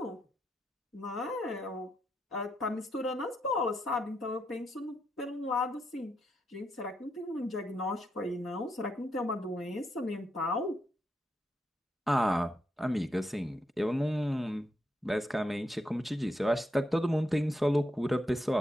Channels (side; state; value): both; normal; correlation 0.81